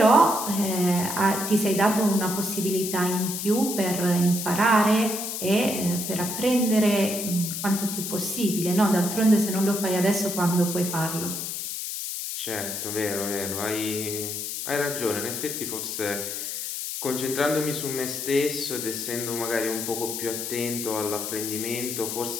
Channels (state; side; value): noise; left; hiss, 5 dB below the sound